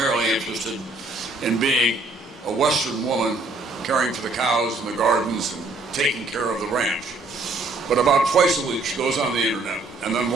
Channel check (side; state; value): left; quieter; 3.2 dB